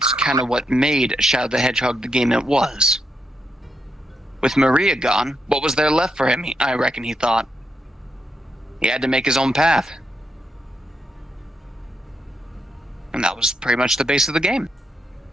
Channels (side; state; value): both; normal; correlation 0.81